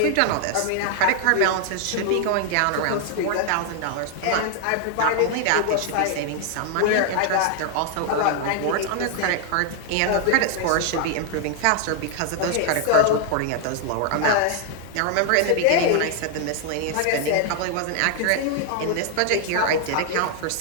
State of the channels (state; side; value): different; both; correlation 0.00